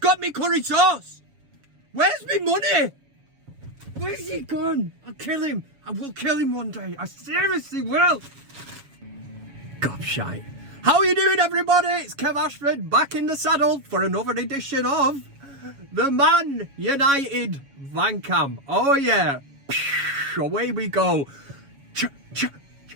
me curry sauce. Where's my money? Where's he gone? I'll kill him. I will kill him one day. I seriously will. Gobshite. How are you doing, everybody? It's Kev Ashford back in the saddle for another edition of the ManUtd VanCam. Oh yeah. Away we go.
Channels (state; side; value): late; left; 7.2 ms